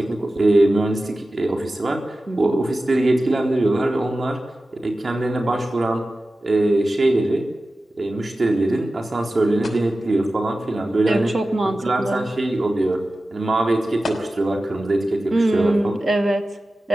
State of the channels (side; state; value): both; normal; correlation 0.95